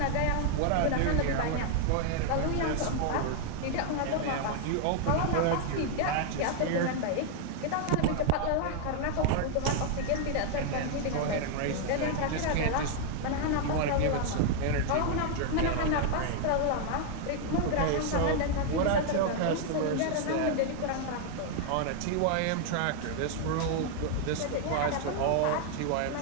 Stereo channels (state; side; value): different; both; correlation 0.00